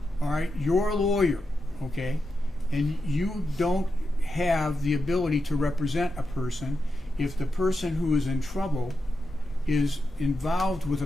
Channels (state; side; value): normal; both; correlation 0.87